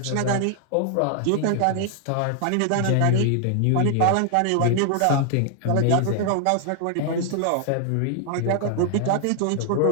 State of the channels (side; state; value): both; different; correlation 0.00